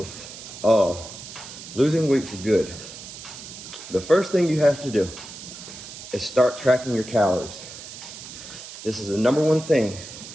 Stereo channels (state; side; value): noise; right; hiss, 13 dB below the sound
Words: of losing weight for good. The first thing you have to do is start tracking your calories. This is the number one thing